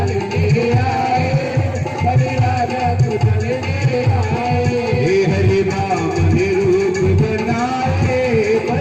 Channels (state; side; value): identical; both; correlation 1.00